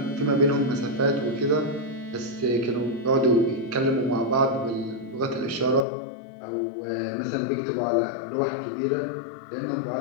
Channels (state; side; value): drops out; right; at 5.9 s